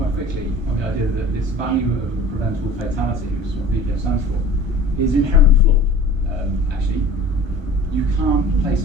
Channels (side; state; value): left; late; 1.2 ms